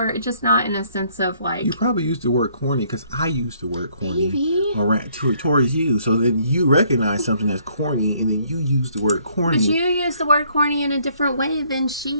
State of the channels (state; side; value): inverted; both; correlation -0.65